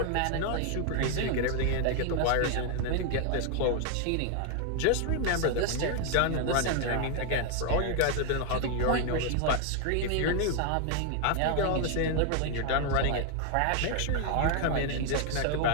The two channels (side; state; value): both; different; correlation 0.00